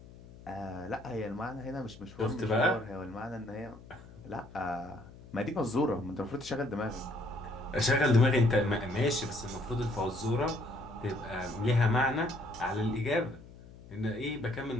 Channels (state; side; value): noise; left; hum, 19 dB below the sound